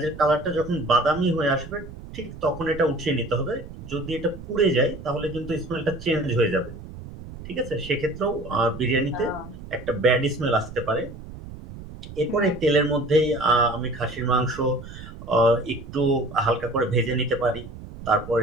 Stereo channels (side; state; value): right; noise; rumble, 14 dB below the sound